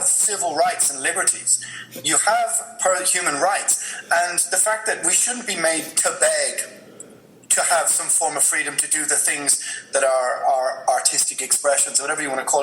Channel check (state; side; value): identical; both; correlation 1.00